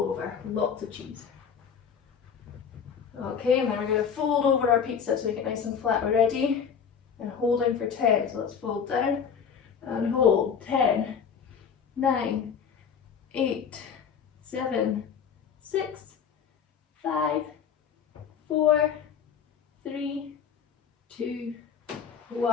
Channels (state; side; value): quieter; right; 7.1 dB